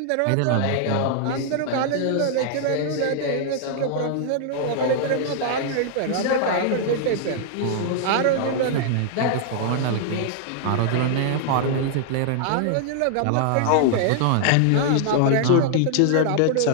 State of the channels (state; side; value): different; both; correlation 0.00